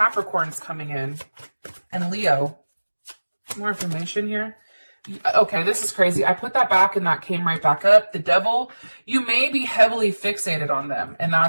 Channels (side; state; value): both; inverted; correlation -1.00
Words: coming in. And Leo. More information here. Okay, this is crazy. I put that back and that came right back up. The Devil, you may be heavily fixated on them. And